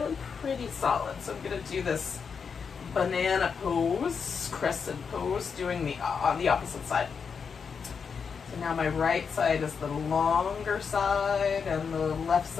pretty solid. So I'm gonna do this banana pose, crescent pose, doing the on the opposite side. So now my right side is the longer side, and the left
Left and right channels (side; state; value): right; quieter; 6.0 dB